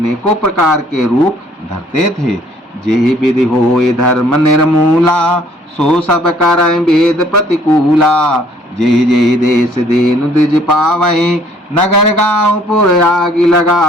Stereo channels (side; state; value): both; normal; correlation 0.60